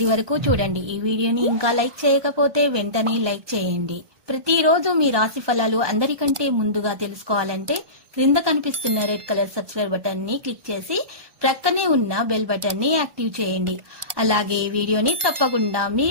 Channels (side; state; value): left; late; 1.2 ms